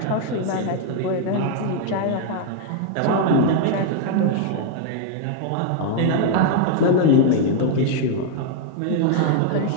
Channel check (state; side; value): different; both; correlation 0.00